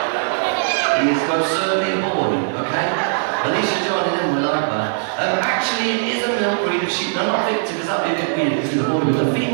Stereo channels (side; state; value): left; silent; digital silence